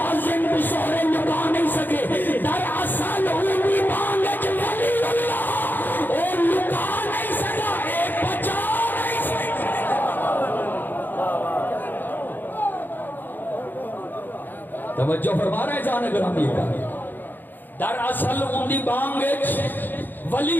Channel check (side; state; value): right; late; 0.089 ms